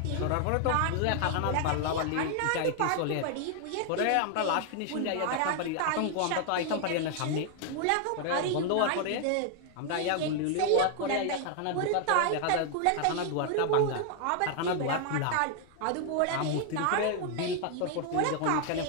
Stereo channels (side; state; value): both; different; correlation 0.00